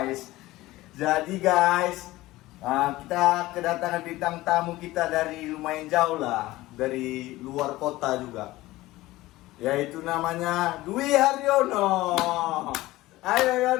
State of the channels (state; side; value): quieter; right; 18.0 dB